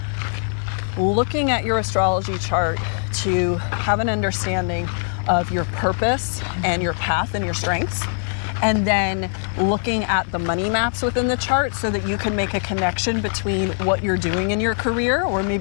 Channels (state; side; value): silent; right; 62 dB below the other